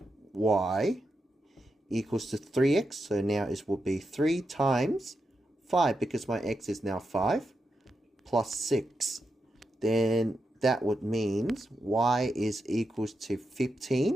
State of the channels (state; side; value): normal; both; correlation 0.86